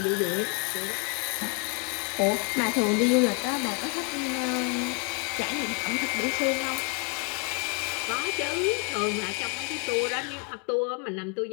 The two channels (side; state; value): right; quieter; 32.8 dB